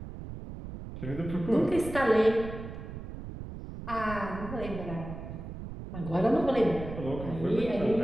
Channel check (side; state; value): right; noise; rumble, 10 dB below the sound